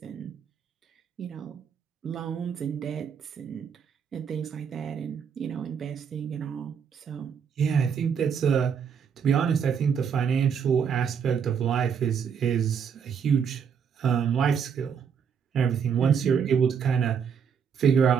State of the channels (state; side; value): quieter; left; 7.1 dB